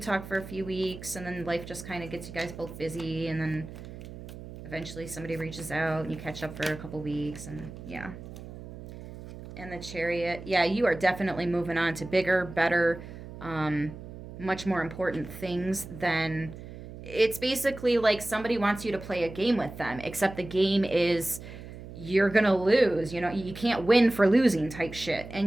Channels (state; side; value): noise; right; hum, 13 dB below the sound